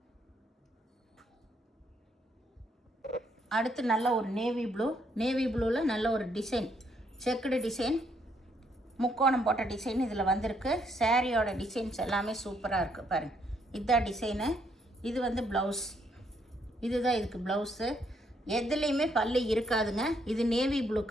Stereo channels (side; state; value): both; normal; correlation 0.72